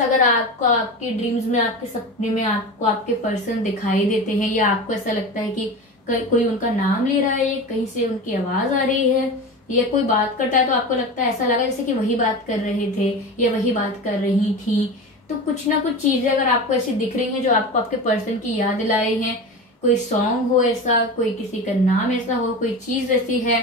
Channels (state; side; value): normal; both; correlation 0.28